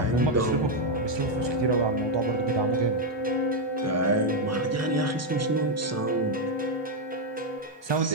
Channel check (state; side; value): normal; both; correlation 0.02